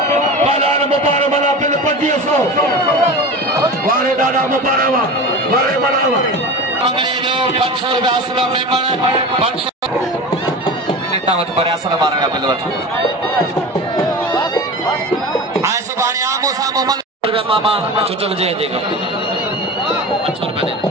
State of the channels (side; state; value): both; normal; correlation 0.31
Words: 500 वाले दादा मुबारक वाले बनावा अंग्रेजों 500 रुपया असला मेमन 500 लेता मत पर असला मारेगा बिलवट आए सुबानी आमो सामो मन रुपया मामा चुचल जे देगा 500 रुपया दे